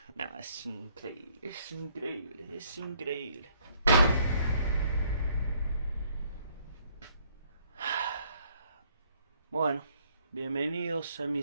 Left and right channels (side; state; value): both; inverted; correlation -0.65